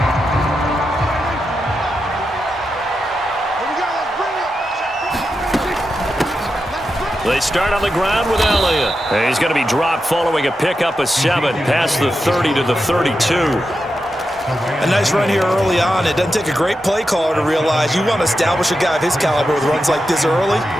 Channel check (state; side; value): normal; both; correlation 0.88